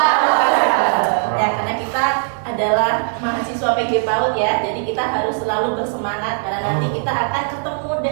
Ya, karena kita adalah mahasiswa PG PAUD ya, jadi kita harus selalu bersemangat karena nanti kita akan ketemu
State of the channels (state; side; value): silent; left; digital silence